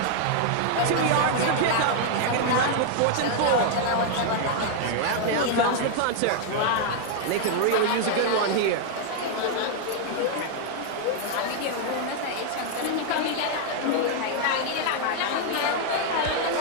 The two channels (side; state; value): both; different; correlation 0.00